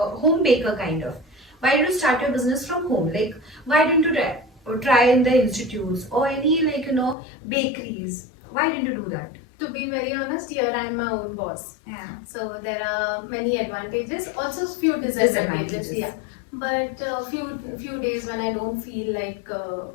baker kind of? Why did you start your business from home? Like, why didn't you try in the institutes or any bakeries? Why didn't you do that? To be very honest, here I am my own boss. Yeah. So there are many advantages, also few disadvantages. Yeah. But few days when I don't feel like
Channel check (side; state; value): right; drops out; at 7.2 s